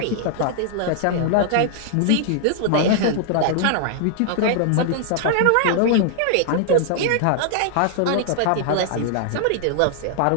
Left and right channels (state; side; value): different; both; correlation -0.01